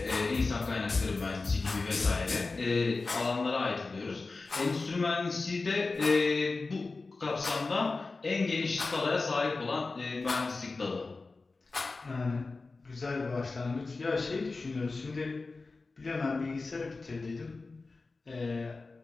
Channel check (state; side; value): quieter; right; 3.8 dB